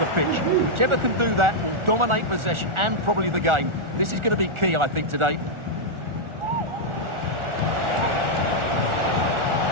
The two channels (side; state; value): left; late; 1.4 ms